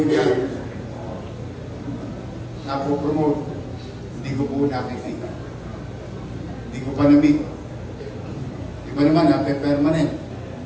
dyan napopromote. Hindi ko po nakikita. Hindi ko pa na-meet. Iba naman, permanent.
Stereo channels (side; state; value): both; identical; correlation 1.00